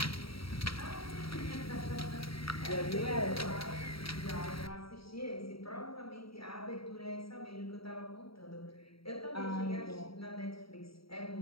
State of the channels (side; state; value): right; late; 0.75 ms